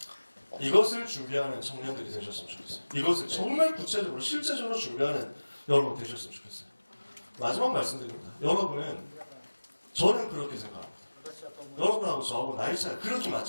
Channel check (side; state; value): both; inverted; correlation -1.00